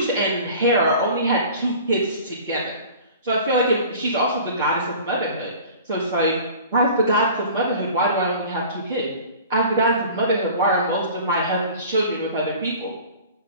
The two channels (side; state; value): both; inverted; correlation -0.43